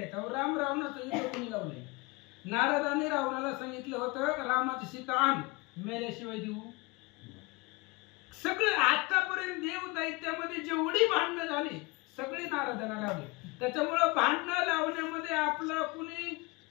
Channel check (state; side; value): quieter; right; 25.4 dB